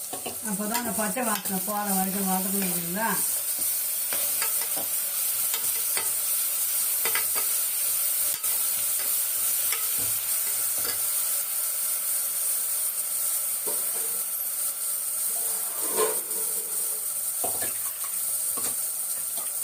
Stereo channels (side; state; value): both; identical; correlation 1.00